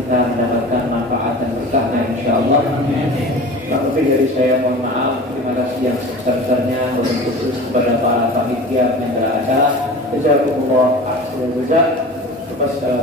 mendapatkan manfaat dan berkahnya insyaallah. Lebih dari saya mohon maaf. Terima kasih yang sebesar-besarnya khusus kepada para panitia penyelenggara acara. Jazakumullah khairan.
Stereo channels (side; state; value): both; normal; correlation 0.36